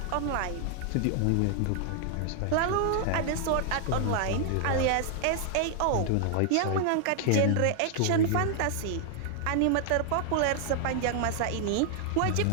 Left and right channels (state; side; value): different; both; correlation 0.00